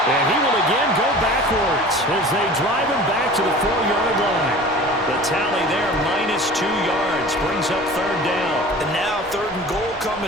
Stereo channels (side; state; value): both; normal; correlation 0.41